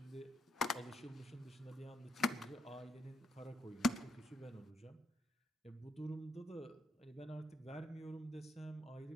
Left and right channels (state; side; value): normal; both; correlation 0.76